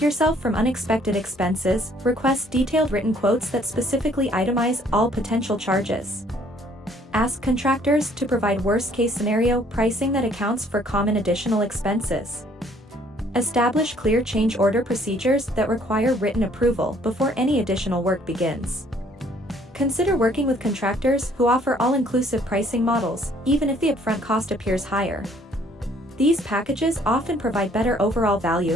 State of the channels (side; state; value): both; normal; correlation 0.61